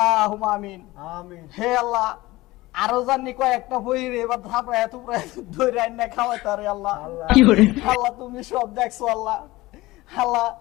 আমিন। আমিন। হে আল্লাহ, আরো জানি কয়েকটা বইরে এবার ধাপায় থুপড়ায় ধরে আইনা খাওয়াই তারে আল্লাহ। আল্লাহ তুমি সব দেখছো আল্লাহ। আল্লাহ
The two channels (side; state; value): right; quieter; 19.3 dB